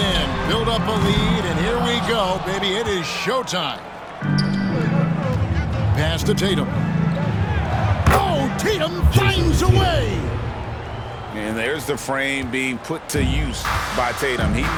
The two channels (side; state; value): both; identical; correlation 1.00